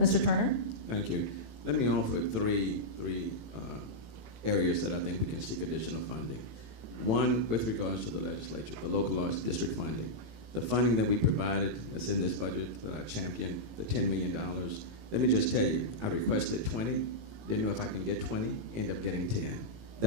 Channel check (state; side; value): late; left; 18 ms